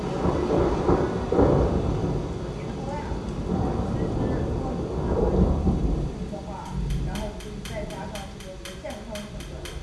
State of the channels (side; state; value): both; identical; correlation 1.00